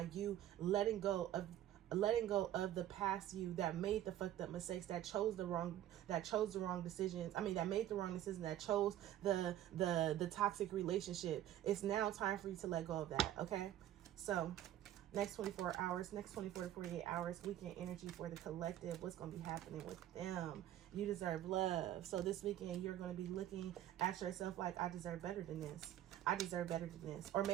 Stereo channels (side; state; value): left; quieter; 12.5 dB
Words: you letting go of the past you that made the fucked up mistakes, that chose the wrong decisions. That made the wrong decision, that chose the toxic relationship. It's now time for you to let go of that. Okay. So next 24 to 48 hours, weekend energy for the collective. What's going to be happening with them? You deserve love. So this weekend, you're going to be looking at yourself like, I deserve better than this. I deserve better than this. Or